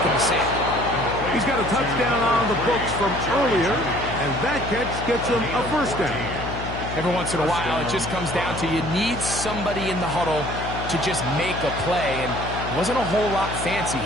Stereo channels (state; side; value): noise; left; hum, 8 dB below the sound